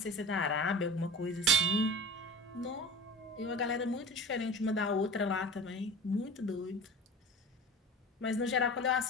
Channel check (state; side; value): normal; both; correlation 0.35